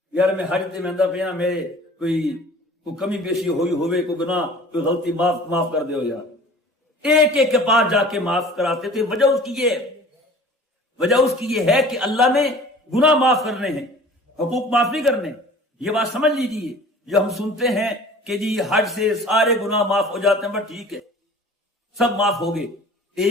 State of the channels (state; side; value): normal; both; correlation 0.45